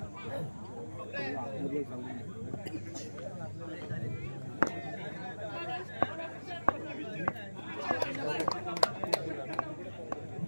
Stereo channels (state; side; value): inverted; both; correlation -1.00